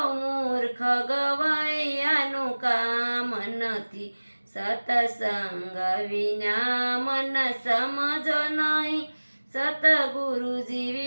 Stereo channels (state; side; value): inverted; both; correlation -1.00